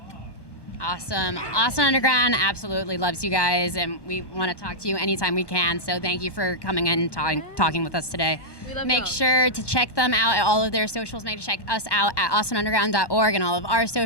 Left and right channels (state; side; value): late; right; 1.1 ms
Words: Awesome. Austin Underground absolutely loves you guys, and we want to talk to you anytime we can. So thank you for coming in and talking with us today. Make sure to check them out at all of their socials. Make sure to check us out at austinunderground.org and all of our